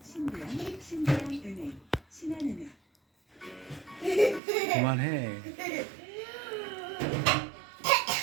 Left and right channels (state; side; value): drops out; left; at 4.4 s